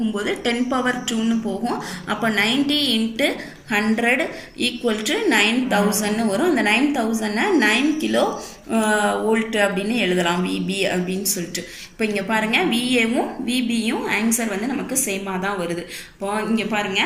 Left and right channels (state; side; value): identical; both; correlation 1.00